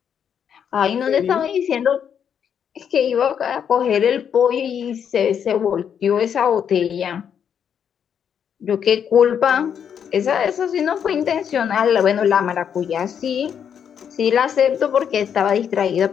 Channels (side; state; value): right; quieter; 8.1 dB